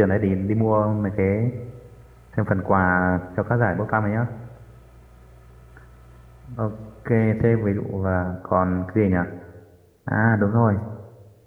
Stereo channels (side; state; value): both; identical; correlation 1.00